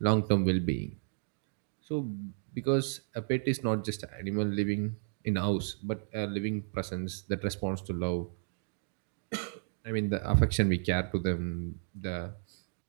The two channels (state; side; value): silent; left; digital silence